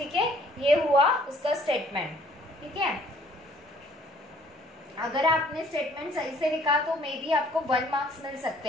है। ये हुआ उसका स्टेटमेंट, ठीक है। अगर आपने स्टेटमेंट सही से लिखा तो मे बी आपको 1 मार्क्स मिल सकते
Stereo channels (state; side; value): normal; both; correlation 0.59